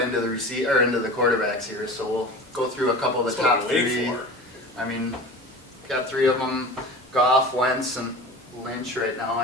the into the quarterbacks here, so we'll go through a couple of the That's what top I'm waiting 3. for. I mean, got 3 of them, Goff, Wentz, and Lynch right now,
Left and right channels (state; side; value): normal; both; correlation 0.35